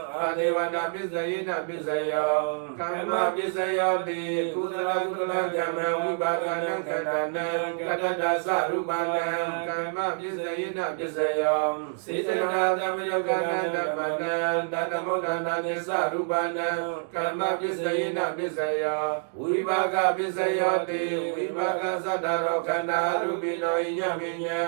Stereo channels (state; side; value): silent; left; 60 dB below the other